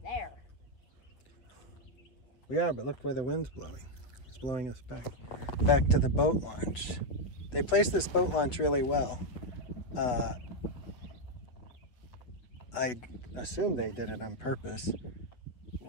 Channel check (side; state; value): right; late; 8.1 ms